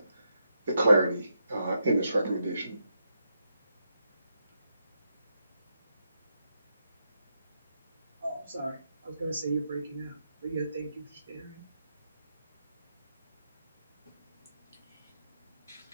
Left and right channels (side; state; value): both; inverted; correlation -0.82